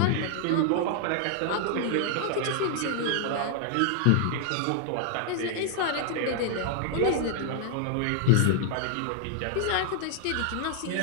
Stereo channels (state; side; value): different; both; correlation 0.00